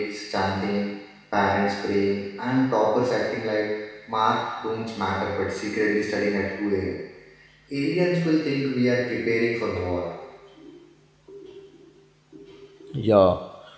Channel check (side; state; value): both; identical; correlation 1.00